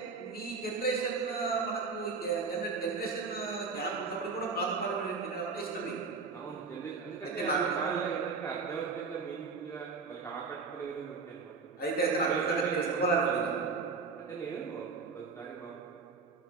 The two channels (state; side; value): quieter; left; 4.6 dB